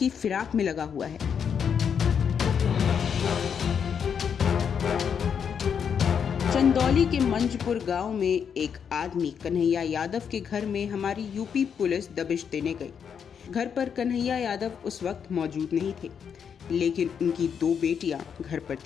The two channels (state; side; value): quieter; right; 7.3 dB